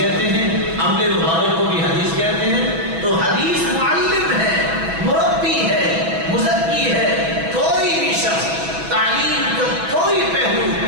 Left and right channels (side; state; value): left; late; 6.1 ms